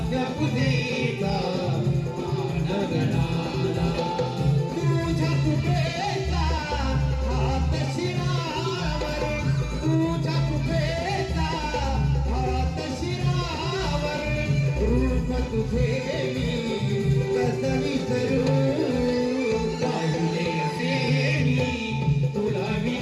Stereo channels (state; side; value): identical; both; correlation 1.00